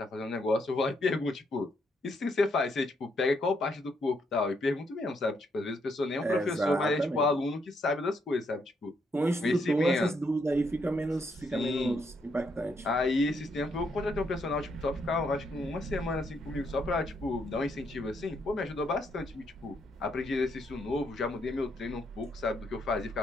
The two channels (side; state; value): both; normal; correlation 0.76